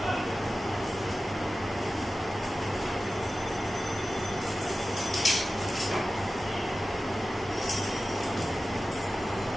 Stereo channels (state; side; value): normal; both; correlation 0.95